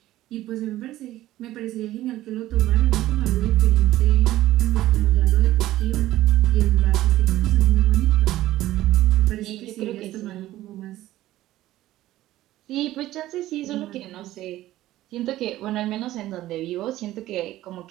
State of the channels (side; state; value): left; quieter; 15.1 dB